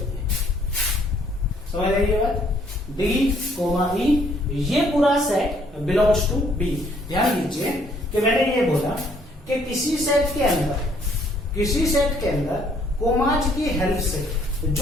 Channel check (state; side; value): normal; both; correlation 0.64